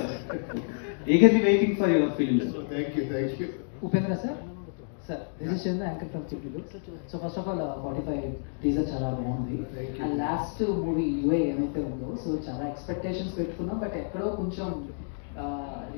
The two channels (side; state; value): right; silent; digital silence